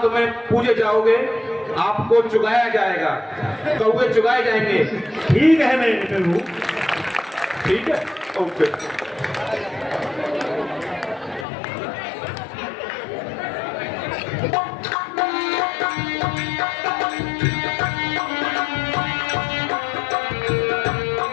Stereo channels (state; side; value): drops out; right; at 11.5 s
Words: में पूजे जाओगे, आपको चुगाया जाएगा, कौवे चुगाए जाएंगे। ठीक है मेरे प्रभु। ठीक है, ओके।